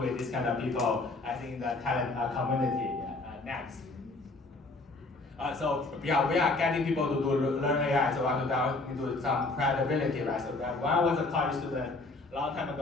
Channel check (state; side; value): quieter; right; 3.3 dB